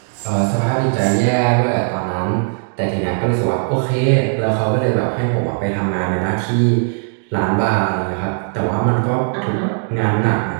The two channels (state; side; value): silent; left; digital silence